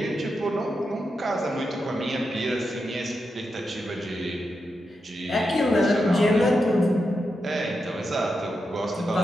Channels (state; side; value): normal; both; correlation 0.87